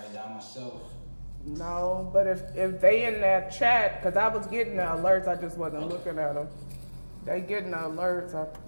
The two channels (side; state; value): both; inverted; correlation -1.00